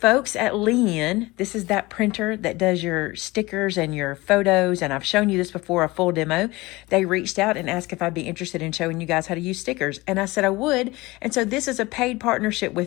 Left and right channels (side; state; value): right; quieter; 21.4 dB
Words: at Leen, this is that printer that does your stickers and your photos, and I've shown you this before, a full demo. They reached out and asked if I'd be interested in showing you guys how to use stickers, and I said I would. And so this is a paid partnership